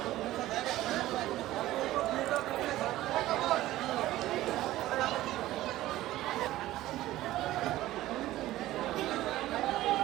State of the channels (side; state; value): left; quieter; 15.6 dB